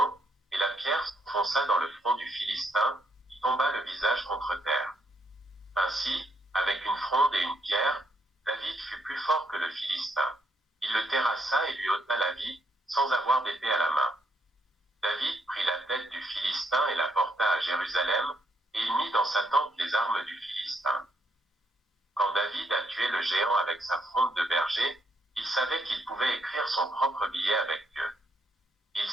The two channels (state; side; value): normal; both; correlation 0.75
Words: et la pierre s'enfonça dans le front du Philistin, qui tomba le visage contre terre. Ainsi, Avec une fronde et une pierre, David fut plus fort que le Philistin. Il le terrassa et lui ôta la vie, sans avoir d'épée à la main. David prit la tête du Philistin et la porta à Jérusalem, et il mit dans sa tente les armes du Philistin. Quand David a tué le géant avec sa fronde de berger, il savait qu'il pouvait écrire son propre billet avec Dieu. Il